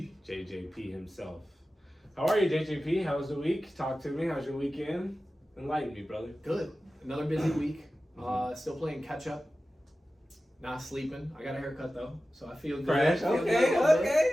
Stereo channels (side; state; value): both; normal; correlation 0.95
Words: JJP himself. How are you, JJP? How was the week? Talk to me. How's your weekend? Enlighten me, brother. Good. Another busy week. Still playing catch up. Not sleeping. I got a haircut though, so I feel good. Fresh.